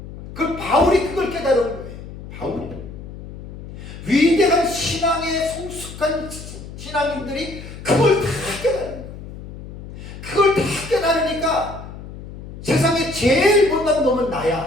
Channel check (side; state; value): left; noise; hum, 13 dB below the sound